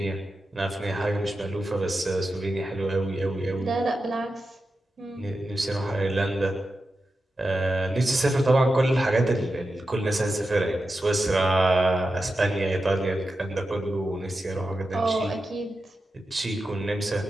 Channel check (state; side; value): normal; both; correlation 0.91